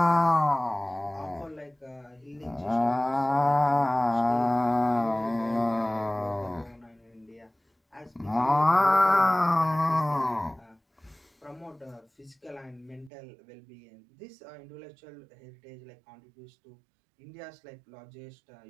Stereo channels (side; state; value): left; drops out; at 13.1 s